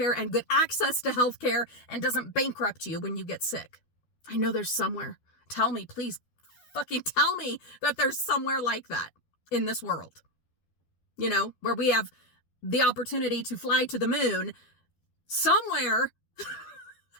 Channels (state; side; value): late; right; 12 ms